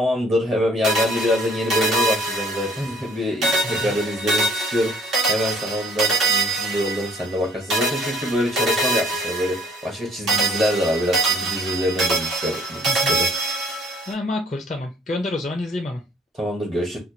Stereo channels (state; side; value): normal; both; correlation 0.58